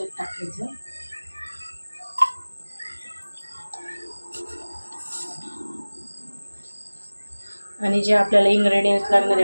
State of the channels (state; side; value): inverted; both; correlation -1.00